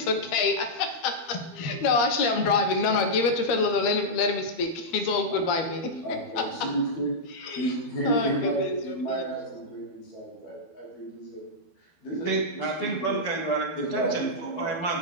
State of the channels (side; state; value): right; late; 12 ms